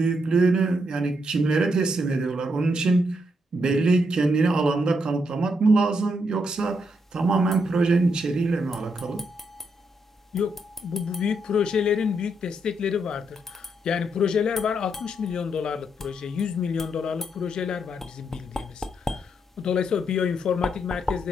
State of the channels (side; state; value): both; normal; correlation 0.78